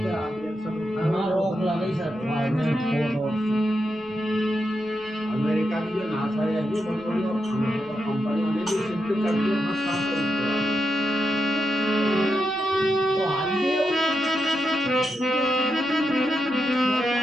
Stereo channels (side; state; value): right; noise; rumble, 28 dB below the sound